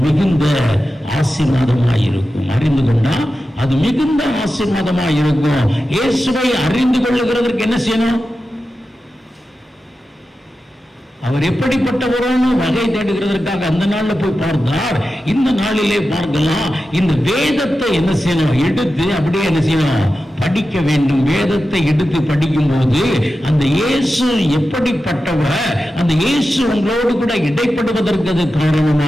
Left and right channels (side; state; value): both; normal; correlation 0.92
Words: மிகுந்த ஆசீர்வாதமாயிருக்கும். அறிந்து கொண்டா அது மிகுந்த ஆசீர்வாதமாயிருக்கும். இயேசுவை அறிந்து கொள்ளுகிறதற்கு என்ன செய்யணும், அவர் எப்படிப்பட்டவரோன்னு வகை தேடுகிறதற்காக அந்த நாள்ல போய் பார்த்தார். இந்த நாளிலே பார்க்கலாம். இந்த வேதத்தை என்ன செய்யணும், எடுத்து அப்படியே என்ன செய்யணும், படிக்க வேண்டும். வேதத்தை எடுத்து படிக்கும் போது அந்த இயேசு எப்படிப்பட்டவர், அந்த இயேசு உங்களோடு கூட இடைப்படுவதற்கு அது